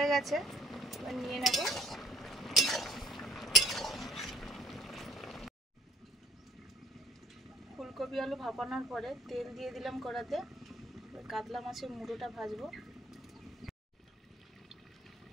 গেছে, এবার নিয়ে নেব। ফুলকপি আলু ভাপানোর পরে তেল দিয়ে দিলাম কড়াতে, কাতলা মাছের মুড়োটা ভাজবো।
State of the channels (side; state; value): both; normal; correlation 0.62